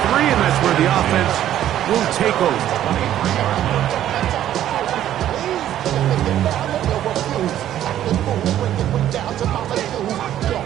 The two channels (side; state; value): left; quieter; 11.8 dB